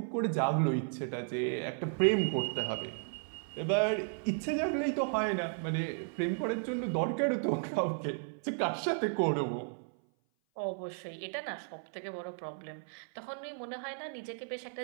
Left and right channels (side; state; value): left; silent; 55 dB below the other